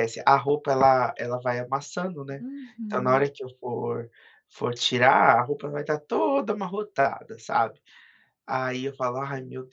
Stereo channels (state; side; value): identical; both; correlation 1.00